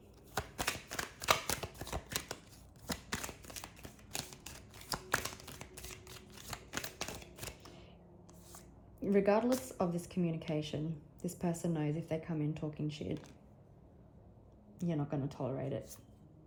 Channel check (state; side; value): identical; both; correlation 1.00